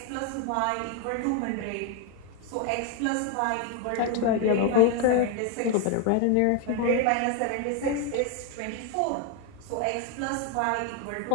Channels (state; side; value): different; both; correlation 0.01